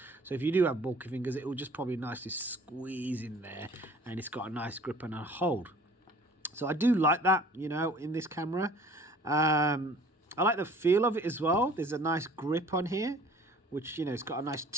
So if you do have bulky fingers, it will just probably nicely squeeze in there. And it's got a nice grip and a hold. So I do like that, you know, in this camera. I like the feel of it as well. There's a nice grip on here, which, you know, it's got a nice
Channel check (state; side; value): normal; both; correlation 0.50